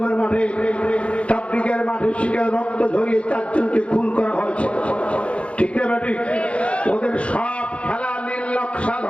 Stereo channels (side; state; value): right; late; 0.061 ms